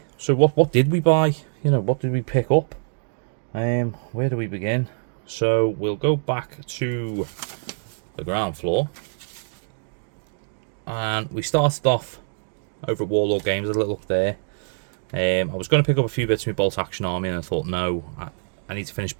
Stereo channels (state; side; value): silent; left; digital silence